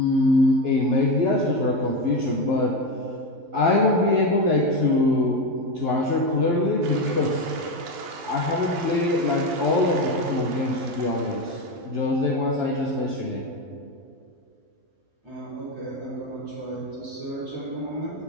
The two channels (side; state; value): left; late; 12 ms